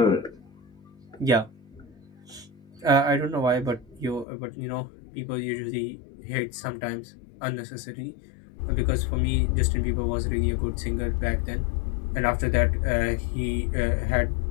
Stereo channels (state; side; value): drops out; right; at 4.2 s